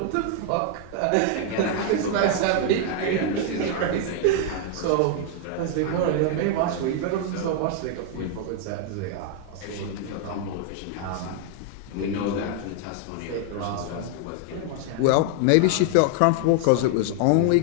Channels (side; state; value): both; different; correlation 0.00